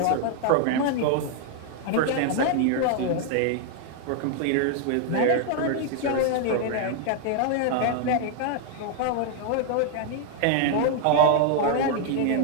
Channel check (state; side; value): different; both; correlation 0.00